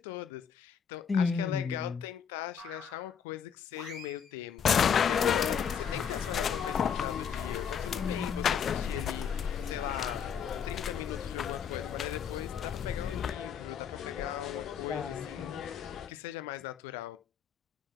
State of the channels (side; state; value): right; quieter; 7.5 dB